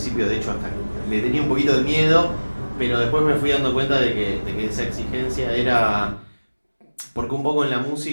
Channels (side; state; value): both; inverted; correlation -1.00